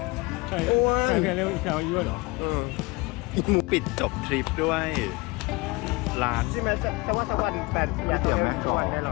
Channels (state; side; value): quieter; right; 24.9 dB